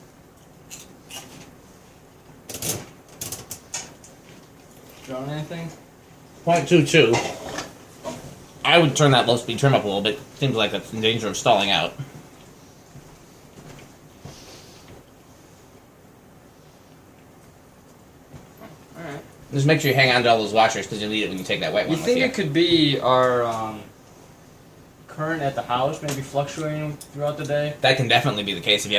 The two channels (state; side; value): identical; both; correlation 1.00